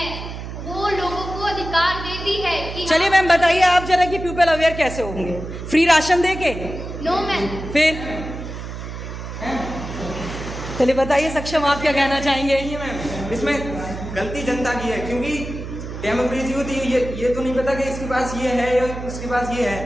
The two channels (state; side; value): noise; right; hum, 9 dB below the sound